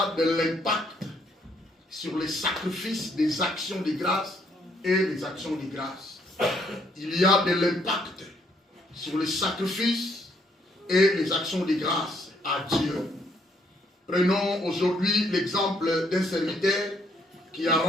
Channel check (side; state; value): both; normal; correlation 0.70